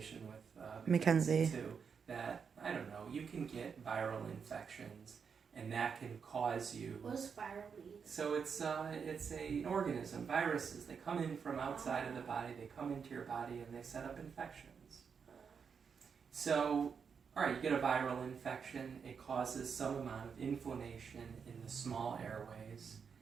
with Mackenzie too, that, I don't know, you can get viral infections and that can cause you... What does viral mean? So it's an organism, viruses. They come in from outside of the body, they come into your body and they set up infections. So, alright, you get a viral infection, it causes some amount of inflammation in the small airways,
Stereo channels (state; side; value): quieter; left; 6.3 dB